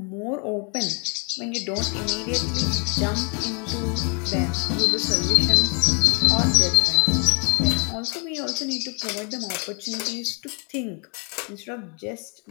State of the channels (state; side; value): quieter; right; 36.2 dB